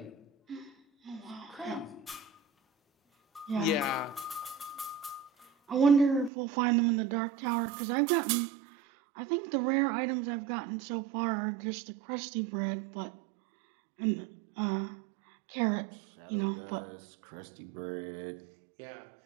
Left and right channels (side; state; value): left; drops out; at 6.3 s